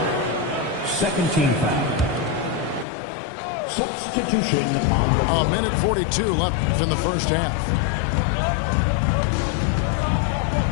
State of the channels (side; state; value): right; drops out; at 2.9 s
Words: Second team foul. Substitution on A minute 42 left in the first half.